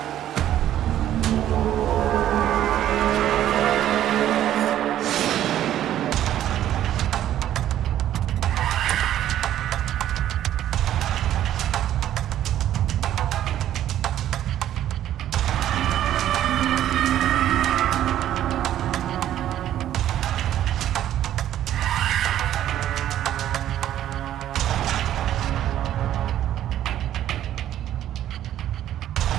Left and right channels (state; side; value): quieter; left; 11.9 dB